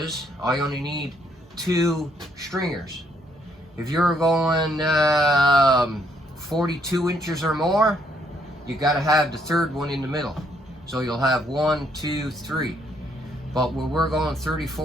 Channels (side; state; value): both; normal; correlation 0.71